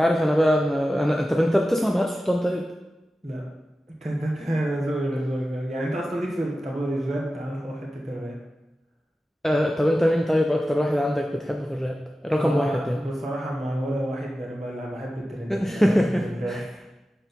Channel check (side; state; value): both; normal; correlation 0.94